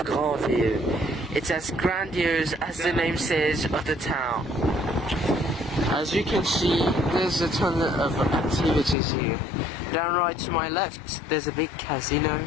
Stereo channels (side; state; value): right; drops out; at 9.0 s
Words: Granville. It's as grandiose as the name says of the town. As you can see, there's a ton of activities here. Down right to my left, there's a big casino.